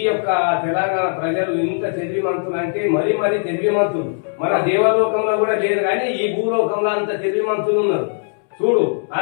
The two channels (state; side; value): silent; right; 66 dB below the other